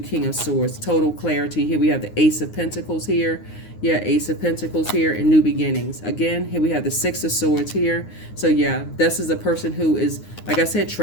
of Swords. Total clarity. Here we have the Ace of Pentacles here. Yeah, Ace of Pentacles here, and new beginnings. Again, here we have the Six of Swords here. So yeah, this is a person who is, like I said,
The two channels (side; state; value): right; late; 9.6 ms